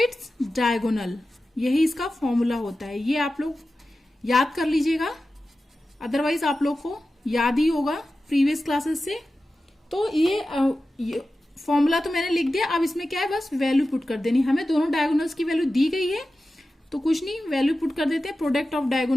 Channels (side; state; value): both; normal; correlation 0.94